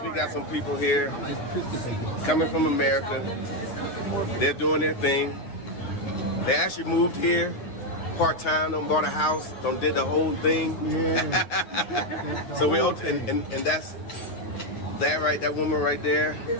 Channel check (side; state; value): right; late; 9.5 ms